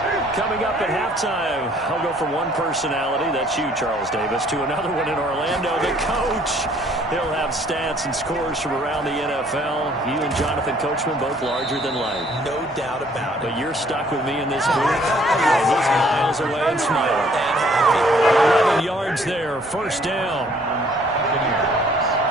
Coming up at halftime, I'll go from one personality, that's you, Charles Davis, to another one in Orlando, the coach. He'll have stats and scores from around the NFL. You and Jonathan Coachman both larger than life. No doubt about it. But you're stuck with me in this booth, and he's miles away and smiling. 11 yards there, first down.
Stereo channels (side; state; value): both; normal; correlation 0.60